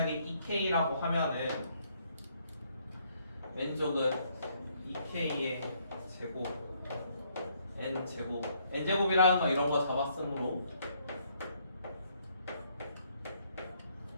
2k라고 하면은 왼쪽은 2k의 제곱 n제곱 n제곱이라는 거 이런 거 잡았으므로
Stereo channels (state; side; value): inverted; both; correlation -0.69